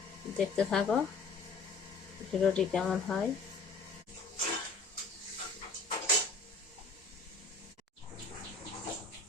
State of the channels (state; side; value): quieter; right; 4.1 dB